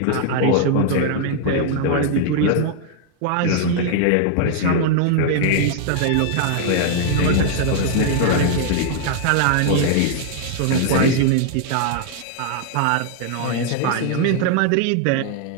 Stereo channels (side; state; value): both; different; correlation 0.00